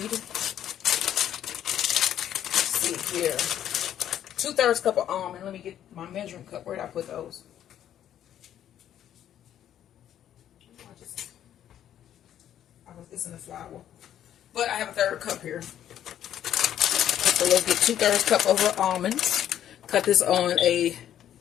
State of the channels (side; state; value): right; quieter; 10.7 dB